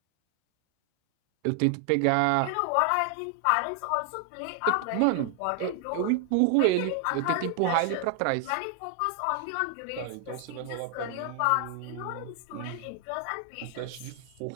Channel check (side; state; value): both; different; correlation 0.00